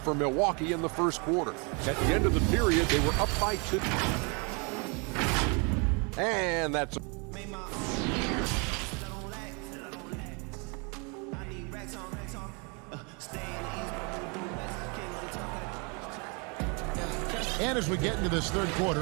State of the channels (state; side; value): quieter; left; 32.7 dB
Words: Milwaukee in the first quarter. At the end of the period, they were up by 2. And that's... And as we get into this third